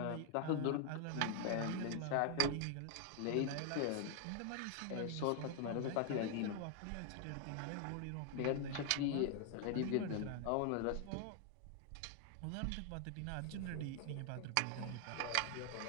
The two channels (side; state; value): both; different; correlation 0.00